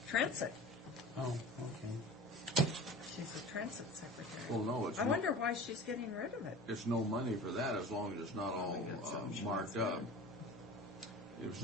Transit. Oh, okay. She's a Transit secretary. Well, no, it's I wonder why she's getting rid of it. it's no money for that as long as it's not all we got something marked up. If it's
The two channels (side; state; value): both; normal; correlation 0.37